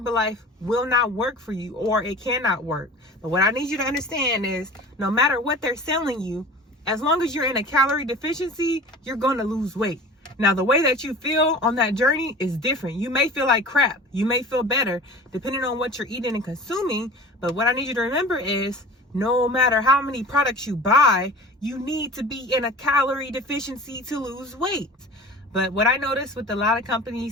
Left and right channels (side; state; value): both; normal; correlation 0.39